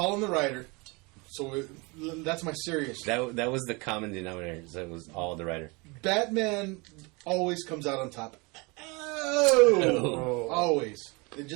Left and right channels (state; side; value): quieter; left; 27.7 dB